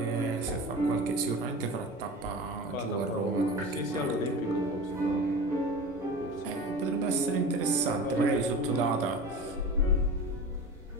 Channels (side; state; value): both; normal; correlation 0.32